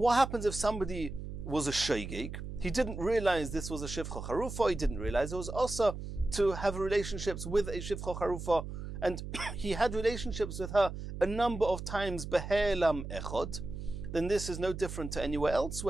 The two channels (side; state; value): right; noise; hum, 8 dB below the sound